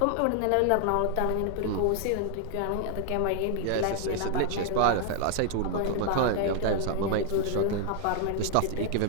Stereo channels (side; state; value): both; different; correlation 0.00